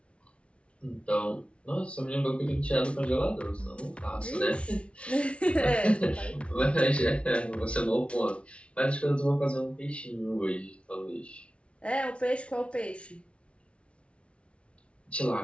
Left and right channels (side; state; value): right; late; 0.060 ms